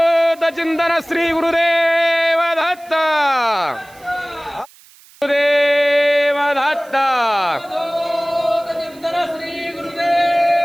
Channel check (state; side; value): noise; right; hiss, 26 dB below the sound